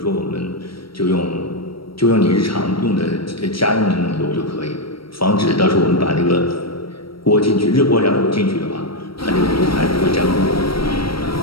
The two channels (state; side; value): late; right; 0.75 ms